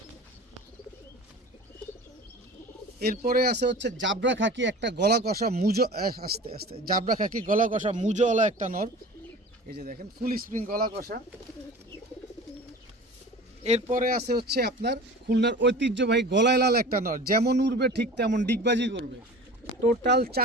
এরপরে আছে হচ্ছে জাবরা খাকি একটা গলা কষা মুজো, আস্তে আস্তে, জাবরা খাকি গলা কষা মুজোওয়ালা একটা নর। এই যে দেখেন ফুল স্প্রিং গলা কষা। এরপরে আছে হচ্ছে আপনার খুলনার ঐতিহ্যবাহী গলায় লাল একটা নর, যেমন উড়বে ঠিক তেমন ডিগবাজি করবে। টোটাল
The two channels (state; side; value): normal; both; correlation 0.38